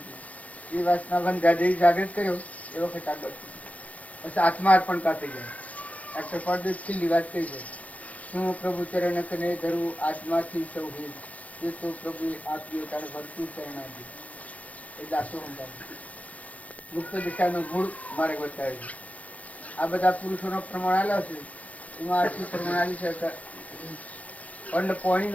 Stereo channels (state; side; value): late; right; 0.070 ms